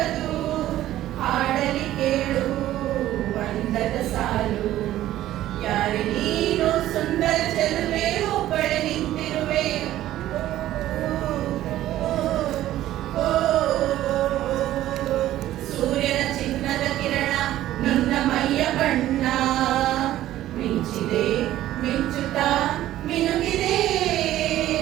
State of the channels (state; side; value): quieter; left; 13.8 dB